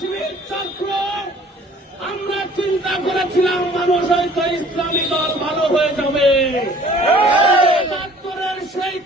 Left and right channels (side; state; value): both; normal; correlation 0.52